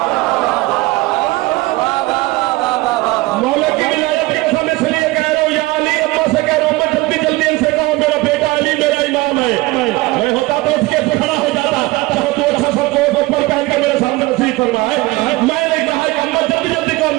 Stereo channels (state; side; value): quieter; left; 20.8 dB